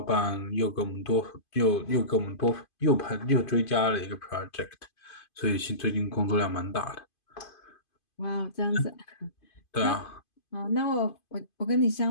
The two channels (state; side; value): late; right; 2.5 ms